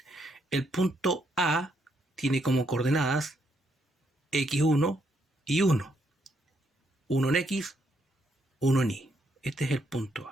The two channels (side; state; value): both; normal; correlation 0.75